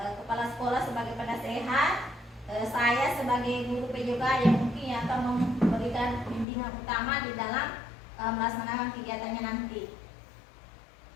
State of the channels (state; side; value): drops out; right; at 6.5 s